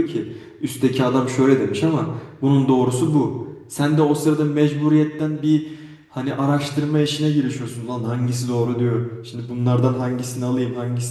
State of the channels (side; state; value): both; identical; correlation 1.00